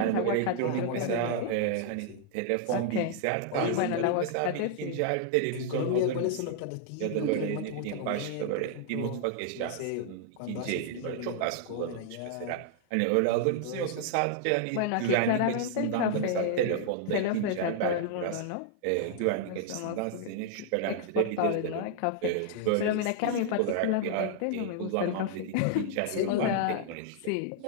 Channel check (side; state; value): both; different; correlation -0.01